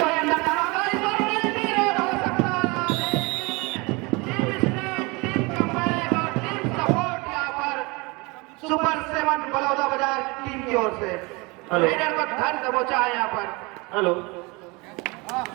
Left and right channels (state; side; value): quieter; left; 26.5 dB